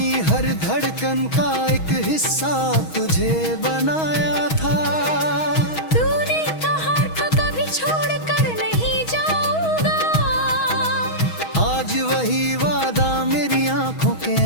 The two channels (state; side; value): late; right; 6.3 ms